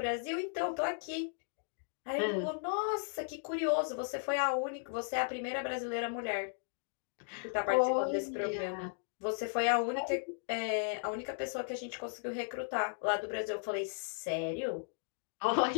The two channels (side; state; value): right; silent; digital silence